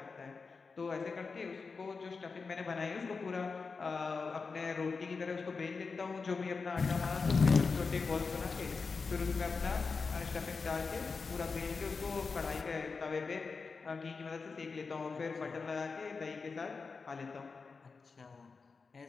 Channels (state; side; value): quieter; right; 4.7 dB